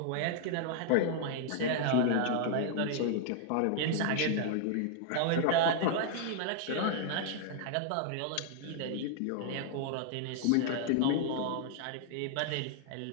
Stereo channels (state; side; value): different; both; correlation -0.01